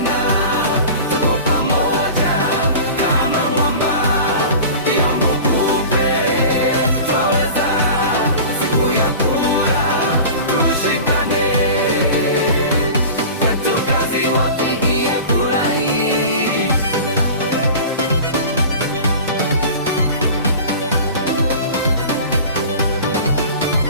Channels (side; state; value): both; inverted; correlation -0.37